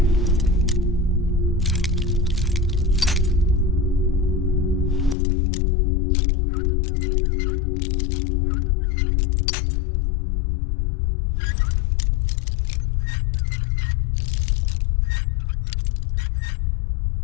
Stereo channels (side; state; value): right; drops out; at 5.2 s